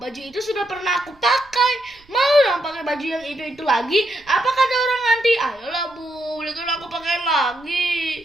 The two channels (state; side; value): noise; right; rumble, 29 dB below the sound